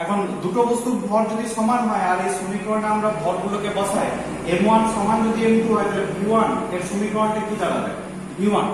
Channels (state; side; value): identical; both; correlation 1.00